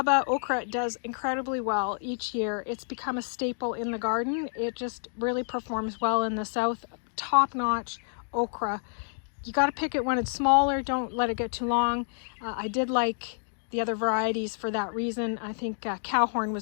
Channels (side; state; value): right; silent; digital silence